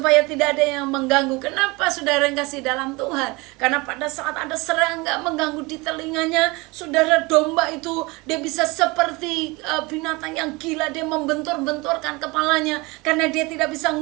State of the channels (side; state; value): left; quieter; 24.7 dB